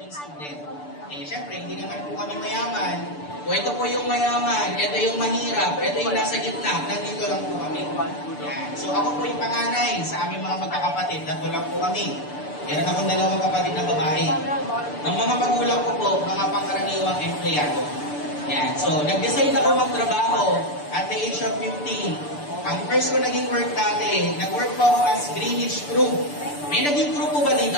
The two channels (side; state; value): right; late; 6.8 ms